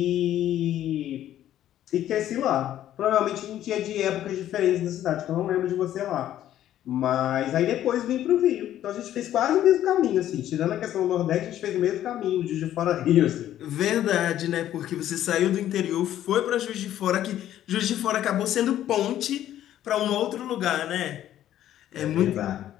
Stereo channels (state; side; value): quieter; right; 12.0 dB